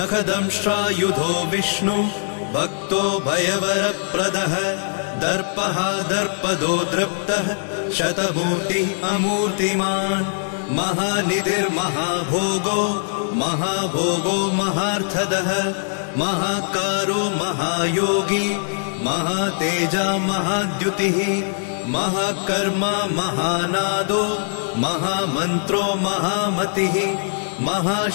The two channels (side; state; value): right; silent; digital silence